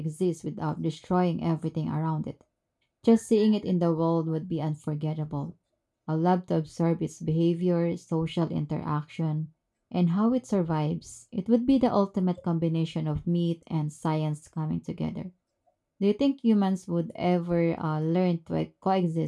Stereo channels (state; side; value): identical; both; correlation 1.00